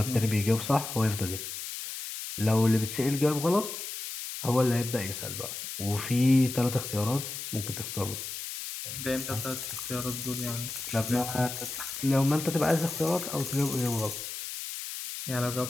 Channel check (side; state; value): left; noise; hiss, 7 dB below the sound